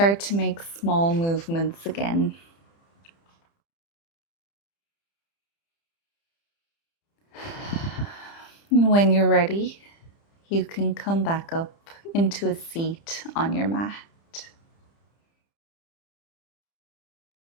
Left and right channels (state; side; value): late; right; 30 ms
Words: to make small movements again. And when you're ready, you can come back up into a seat on your mat.